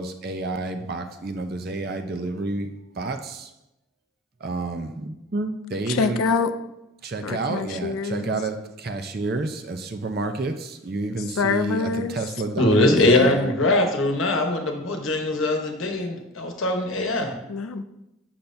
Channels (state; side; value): normal; both; correlation 0.33